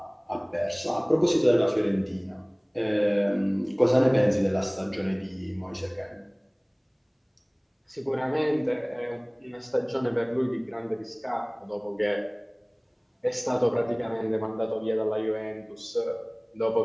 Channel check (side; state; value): both; identical; correlation 1.00